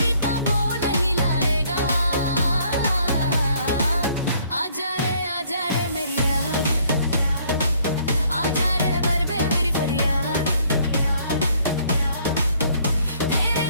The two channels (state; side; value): inverted; both; correlation -0.63